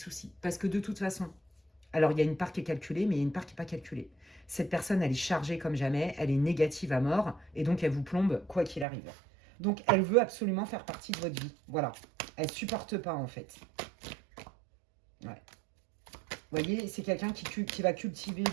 Parce que de toute façon, alors il y a une part qui est calculée, mais il y a une part qui n'est pas calculée. Cette personne, elle est chargée comme jamais, elle est négative à mort, et donc elle vous plombe quoi qu'il arrive. Donc elle veut absolument faire partie de votre vie. Voilà. Elle ne supporte pas en fait. Ouais. Vous voyez, c'est quelqu'un qui va cultiver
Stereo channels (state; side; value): drops out; left; at 8.8 s